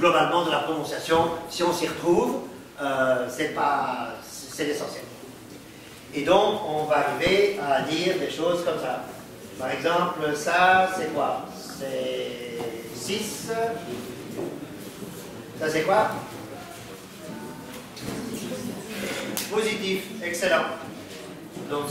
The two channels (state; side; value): identical; both; correlation 1.00